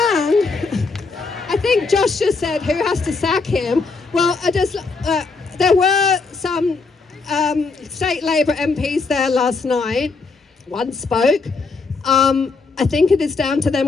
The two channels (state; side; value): quieter; right; 4.2 dB